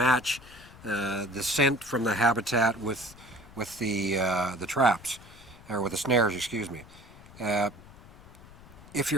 the scent from the habitat with the traps, or with the snares, excuse me. If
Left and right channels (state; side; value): noise; left; rumble, 20 dB below the sound